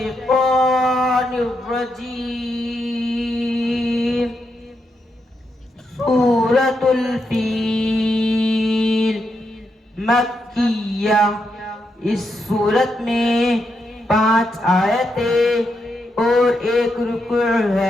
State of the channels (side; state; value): both; normal; correlation 0.82